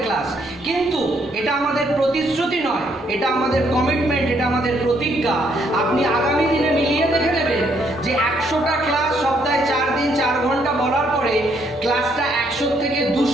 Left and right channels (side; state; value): both; normal; correlation 0.71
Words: ক্লাস, কিন্তু এটা আমাদের প্রতিশ্রুতি নয়, এটা আমাদের কমিটমেন্ট, এটা আমাদের প্রতিজ্ঞা। আপনি আগামী দিনে মিলিয়ে দেখে নেবেন যে 100টা ক্লাস সপ্তাহে 4 দিন 4 ঘন্টা বলার পরে ক্লাসটা 100 থেকে